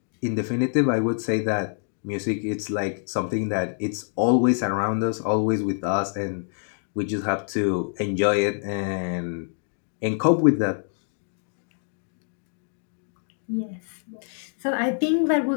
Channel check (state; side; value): silent; right; 61 dB below the other